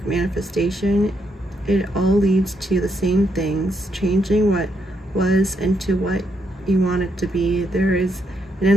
manifestation, it all leads to the same things, changing what was into what you want it to be. There is an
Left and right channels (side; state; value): both; normal; correlation 0.78